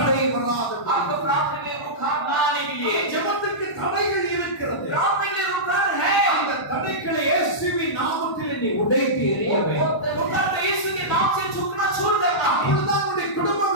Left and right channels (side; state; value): right; late; 1.1 ms